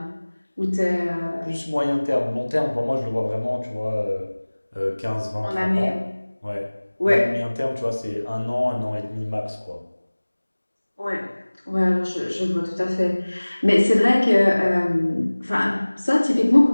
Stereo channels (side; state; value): both; inverted; correlation -1.00